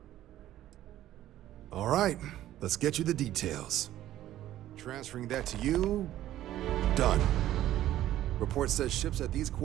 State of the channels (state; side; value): quieter; left; 13.3 dB